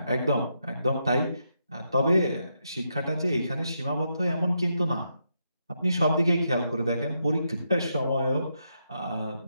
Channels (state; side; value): inverted; both; correlation -0.81